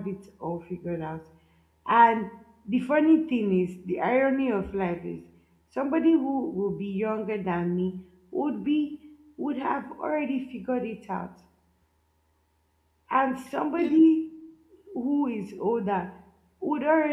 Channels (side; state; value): both; identical; correlation 1.00